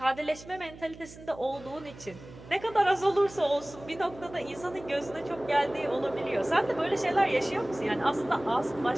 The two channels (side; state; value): right; noise; hum, 18 dB below the sound